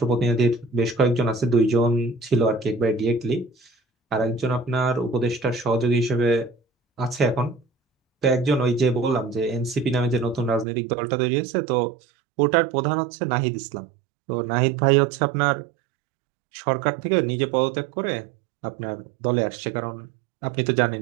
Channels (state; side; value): drops out; left; at 10.7 s